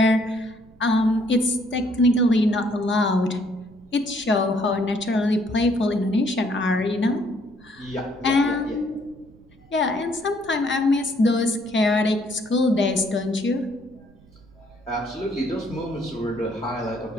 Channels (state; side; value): noise; right; rumble, 27 dB below the sound